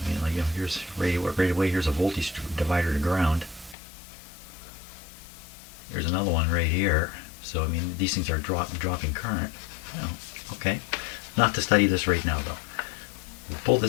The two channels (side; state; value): right; drops out; at 3.8 s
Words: mean, like, you know, here's radio right away. Here's a voltage divider to ground. There's another one right here. So, I mean, these things are dropping current. Oh, okay. Not to study this right now, though. We'll pull